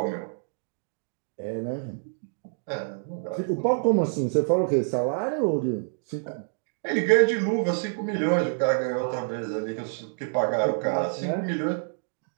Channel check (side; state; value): left; silent; digital silence